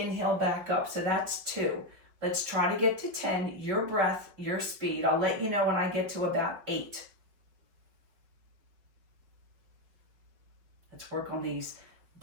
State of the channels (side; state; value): left; late; 5.3 ms